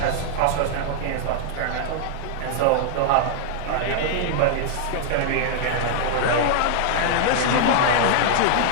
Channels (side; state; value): both; different; correlation -0.01